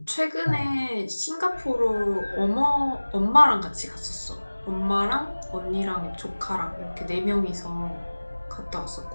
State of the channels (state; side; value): inverted; both; correlation -1.00